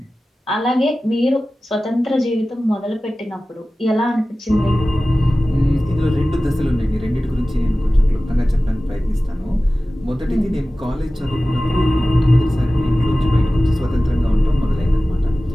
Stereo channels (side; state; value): both; normal; correlation 0.96